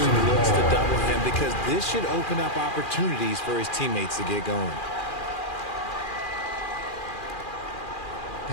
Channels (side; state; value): right; late; 2.4 ms